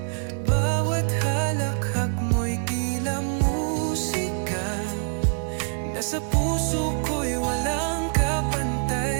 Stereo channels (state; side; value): silent; left; digital silence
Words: Bawat halakhak mo'y tila musika. Nasa puso ko'y walang